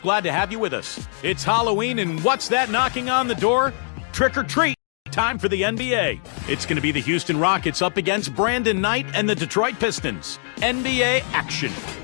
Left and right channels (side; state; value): right; silent; 62 dB below the other